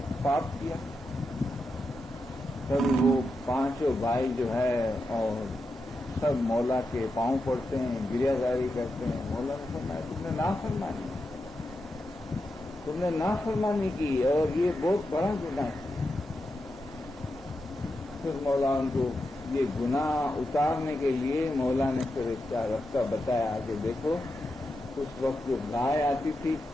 پاپ کیا. تب وہ پانچوں بھائی جو ہے اور سب مولا کے پاؤں پڑتے ہیں، گریہ زاری کرتے ہیں. مولا نے فرمایا تم نے نافرمانی کی اور یہ بہت بڑا گناہ ہے. پھر مولا ان کو یہ گناہ اتارنے کے لیے مولا نے پھر اس کا راستہ بتایا کہ دیکھو اس وقت جو گائے آتی تھی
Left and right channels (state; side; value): normal; both; correlation 0.87